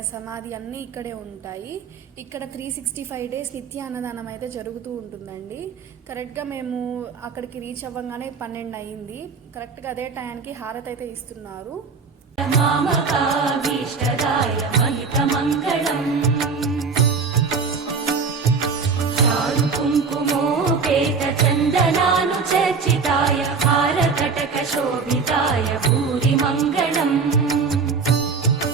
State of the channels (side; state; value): left; quieter; 5.0 dB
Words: సమాధి అన్నీ ఇక్కడే ఉంటాయి. ఇక్కడ 365 డేస్ నిత్య అన్నదానం అయితే జరుగుతూ ఉంటుందండి. కరెక్ట్గా మేము అక్కడికి రీచ్ అవ్వగానే 12 అయ్యింది. కరెక్ట్గా అదే టైంకి హారతి అయితే ఇస్తున్నారు. మామకాభీష్టదాయ మహితమంగళం చారు కుంకుమోపేత చందనానుచర్చితాయ హారకటక శోభితాయ భూరి మంగళం